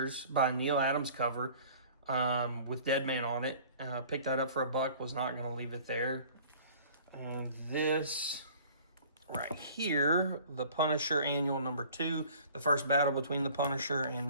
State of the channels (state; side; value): inverted; both; correlation -0.49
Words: by Neil Adams cover with Deadman on it. Picked that up for $1. Was not going to leave it there. And this right here, the Punisher Annual #2, the first battle between the Punisher